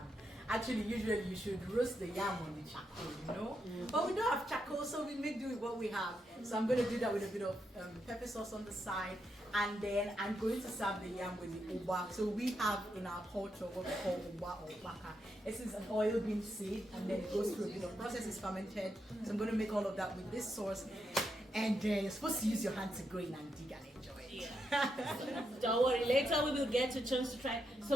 Actually, usually you should roast the yam on the charcoal, you know? But we don't have charcoal, so we make do with what we have. So I'm going to do that with a bit of pepper sauce on the side. And then I'm going to serve the yam with the uba. So we have in our culture what we call uba or baka. This is an oil bean seed, and then it goes through a bit of process, it's fermented. So I'm going to make all of that with this sauce. And you're supposed to use your hand to go in and dig and enjoy it. Yeah. Don't worry, later we will get a chance to try.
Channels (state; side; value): normal; both; correlation 0.82